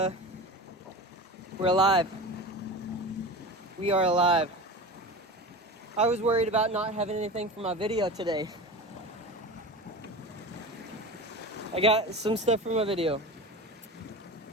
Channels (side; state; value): both; normal; correlation 0.30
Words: we're alive. We are alive. I was worried about not having anything for my video today. I got some stuff for my video.